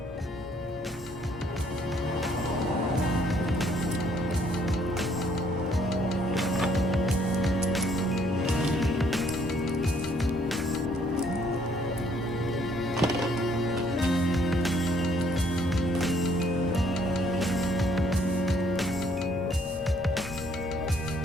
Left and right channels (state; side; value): normal; both; correlation 0.65